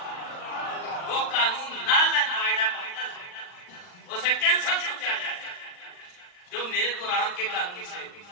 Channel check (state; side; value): late; right; 39 ms